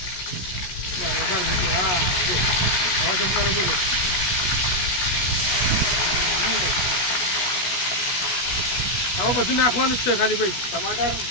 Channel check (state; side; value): late; right; 17 ms